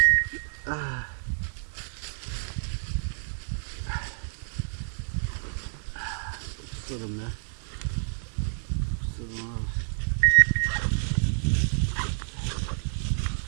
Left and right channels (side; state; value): left; silent; digital silence